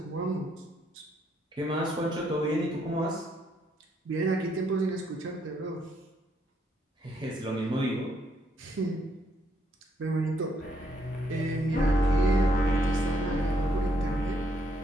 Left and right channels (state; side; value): normal; both; correlation 0.73